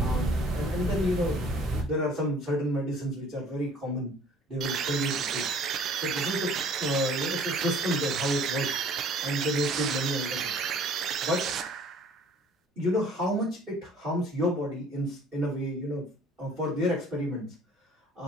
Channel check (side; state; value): both; normal; correlation 0.52